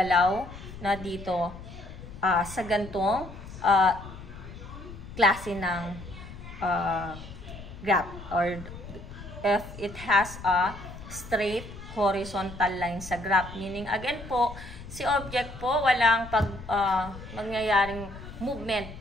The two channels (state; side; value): noise; left; rumble, 13 dB below the sound